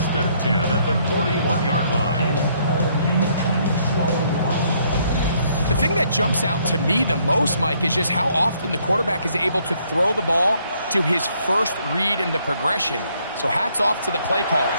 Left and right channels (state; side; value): inverted; both; correlation -0.68